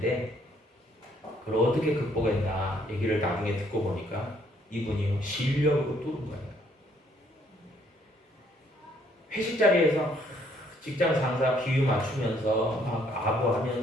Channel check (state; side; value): normal; both; correlation 0.66